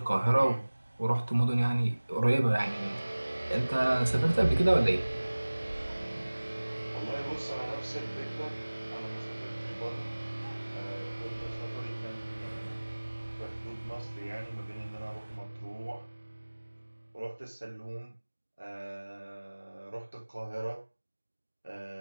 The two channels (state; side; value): inverted; both; correlation -1.00